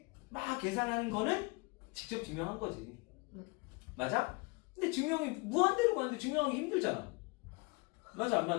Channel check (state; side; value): quieter; right; 27.9 dB